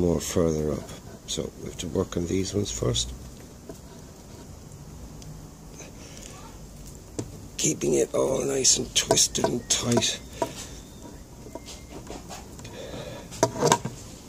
further up. So we have to work on these ones first. Keeping it all nice and twisted and tight.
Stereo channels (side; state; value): both; identical; correlation 1.00